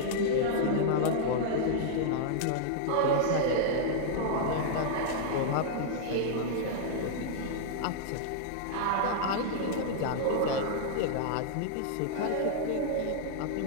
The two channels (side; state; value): both; different; correlation -0.02